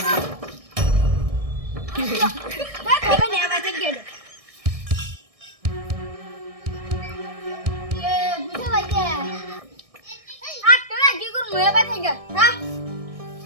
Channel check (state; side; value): late; left; 1.6 ms